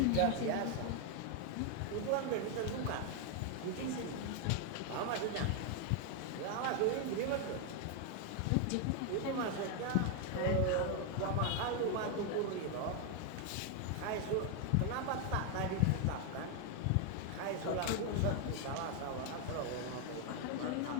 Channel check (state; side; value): different; both; correlation 0.01